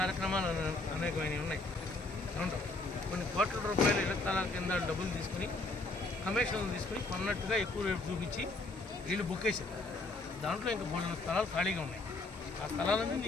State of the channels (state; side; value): quieter; right; 3.1 dB